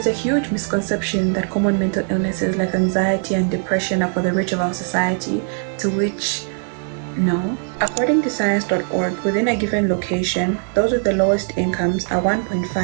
a huge misconception that common mental illnesses like anxiety and depression are for the rich of our society, to which no. According to science.org, within a given location, those with the lowest incomes are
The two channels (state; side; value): silent; left; 57 dB below the other